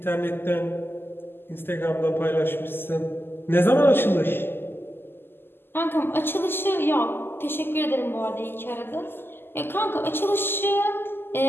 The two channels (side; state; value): right; late; 0.10 ms